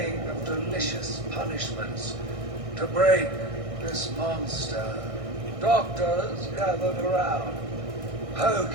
of delicious punishments to break this monster. Doctors gathered around,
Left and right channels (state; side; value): late; left; 1.6 ms